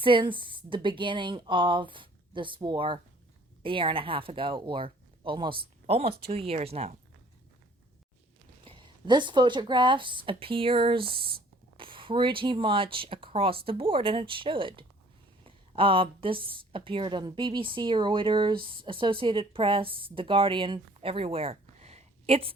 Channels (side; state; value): both; normal; correlation 0.56